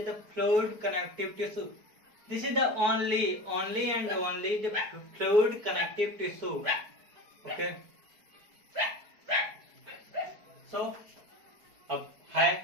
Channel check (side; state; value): left; late; 4.6 ms